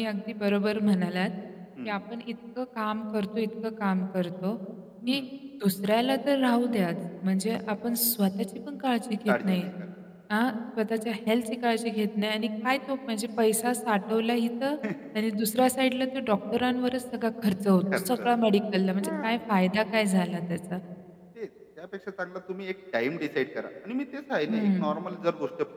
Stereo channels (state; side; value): identical; both; correlation 1.00